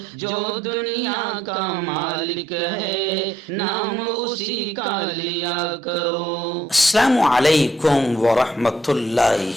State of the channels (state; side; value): normal; both; correlation 0.70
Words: جو دنیا کا مالک ہے نام اسی کا لیا کرو۔ السلام علیکم ورحمۃ